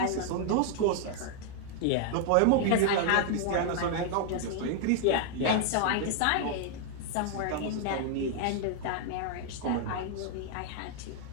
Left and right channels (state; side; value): different; both; correlation -0.01